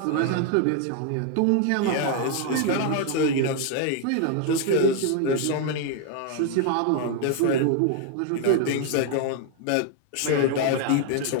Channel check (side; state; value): both; different; correlation 0.00